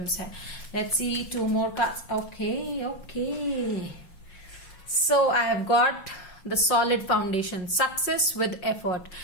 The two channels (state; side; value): late; right; 5.9 ms